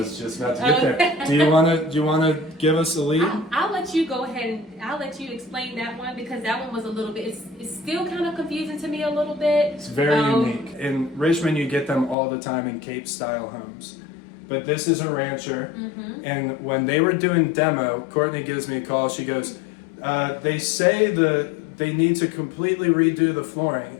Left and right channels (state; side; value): drops out; right; at 12.2 s